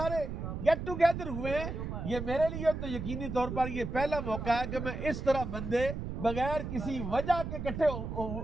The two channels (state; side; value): noise; right; rumble, 5 dB below the sound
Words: گیٹ ٹوگیدر ہوئے ہیں. یہ میرے لیے تو یقینی طور پر یہ پہلا موقع ہے کہ میں اس طرح بندے بغیر کسی وجہ کے اکٹھے